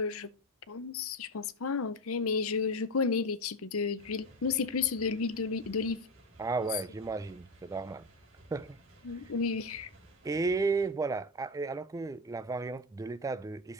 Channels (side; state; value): both; normal; correlation 0.17